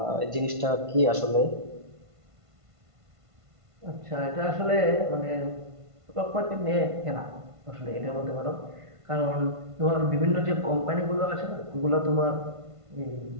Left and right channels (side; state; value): left; late; 1.5 ms